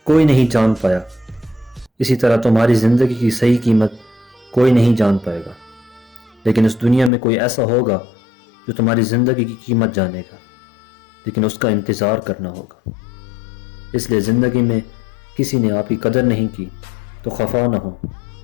کوئی نہیں جان پایا، اسی طرح تمہاری زندگی کی صحیح قیمت کوئی نہیں جان پائے گا، لیکن اس دنیا میں کوئی ایسا ہوگا جو تمہاری زندگی کی قیمت جانے گا، لیکن اس کا انتظار کرنا ہوگا۔ اس لیے زندگی میں کسی نے آپ کی قدر نہیں کی تو خفا نہ ہو،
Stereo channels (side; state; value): right; drops out; at 7.1 s